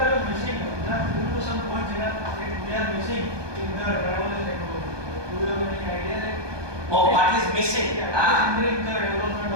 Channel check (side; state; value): left; late; 1.2 ms